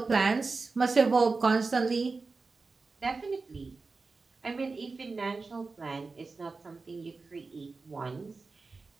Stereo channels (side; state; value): left; quieter; 4.1 dB